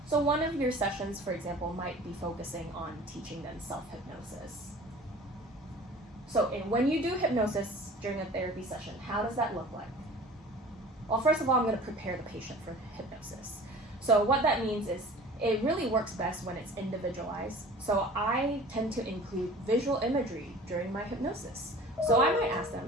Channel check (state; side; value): normal; both; correlation 0.44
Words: So one of your sessions, for example, might be focusing on teaching them self-hypnosis. So when you do hypnosis during a therapy session, how does that look like? Well, first of all, I'm going to prepare the patient for hypnosis. So what that means is it really works best when it's individualized. So I tend to include visual imagery during my hypnosis. So I might ask